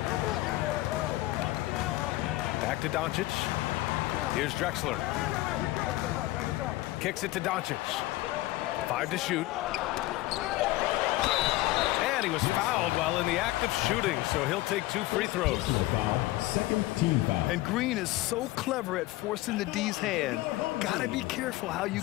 Back to Doncic. Here's Drexler. Kicks it to Doncic. 5 to shoot. And he was fouled while in the act of shooting, so he'll take 2 free throws. Second team foul. And Green is so clever at forcing the D's hand. Gotta be careful how you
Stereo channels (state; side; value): quieter; right; 18.1 dB